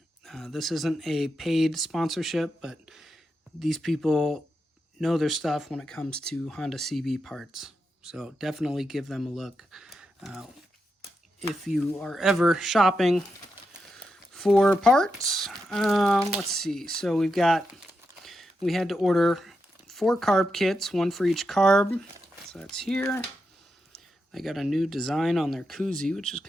this isn't a paid sponsorship, but these people know their stuff when it comes to Honda CB parts, so definitely give them a look. If you are ever shopping for parts. Let's see. So we had to order 4 carb kits, 1 for each carb. So that's here. They got a new design on their koozie, which is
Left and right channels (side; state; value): both; normal; correlation 0.86